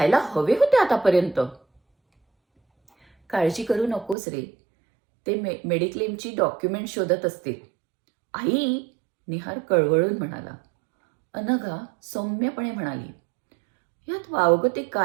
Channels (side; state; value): left; drops out; at 4.2 s